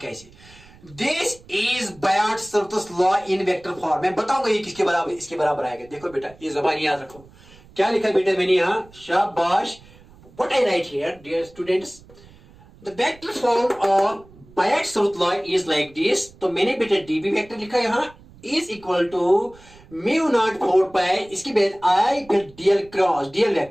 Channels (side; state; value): right; noise; rumble, 24 dB below the sound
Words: this is Biot Savart law in vector form, मैं बताऊंगा ये किसके बराबर, इसके बराबर आएगा। देखो बेटा ये जबान याद रखो, क्या लिखा बेटा मैंने यहां, शाबाश, what I write here dear students, the vector form of Biot Savart law is like this, तो मैंने बेटा डीबी वेक्टर लिखा यहां is equal to mu not 4 pi, इसके बाद आई फिर dl cross, dl